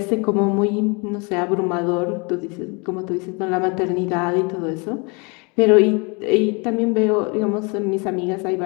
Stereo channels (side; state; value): right; quieter; 31.1 dB